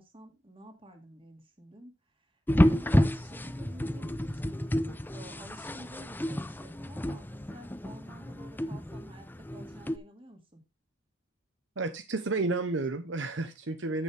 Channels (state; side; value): normal; both; correlation 0.82